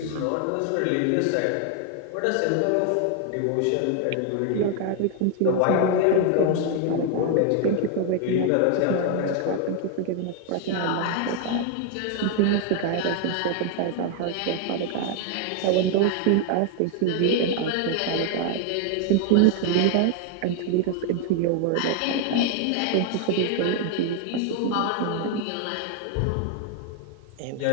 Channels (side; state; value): both; different; correlation 0.00